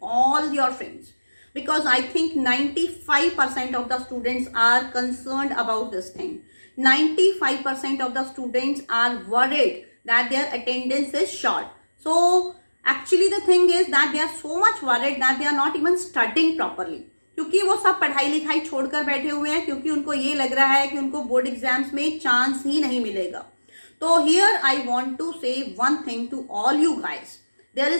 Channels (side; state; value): both; inverted; correlation -1.00